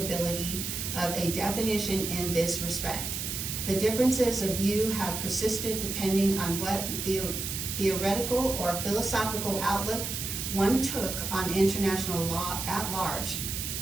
of a definition in this respect. The differences of view have persisted depending on what the theoretical or philosophical outlook one took on international law at large.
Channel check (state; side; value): noise; right; hiss, 4 dB below the sound